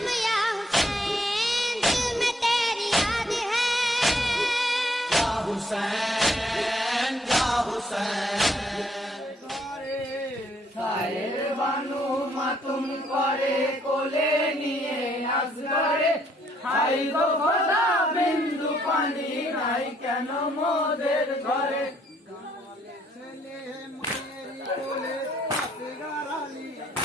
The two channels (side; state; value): both; normal; correlation 0.68